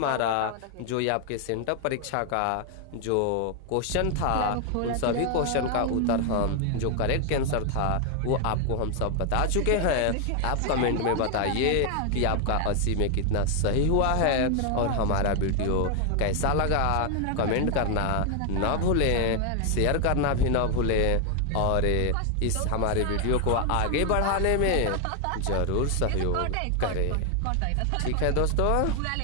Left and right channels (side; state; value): both; different; correlation 0.01